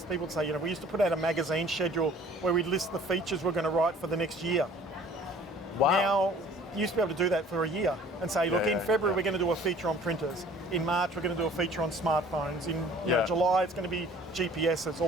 people would say, we used to put out a magazine schedule where we'd list the features we're going to write for the next year. Wow. Now, you used to be able to do that for a year and say, look, in February we're going to do a feature on printers. In March we're going to do a feature on smartphones. In July it's going to be GPSs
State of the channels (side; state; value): both; normal; correlation 0.51